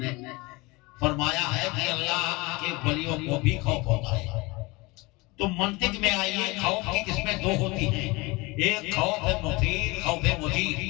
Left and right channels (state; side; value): quieter; right; 24.1 dB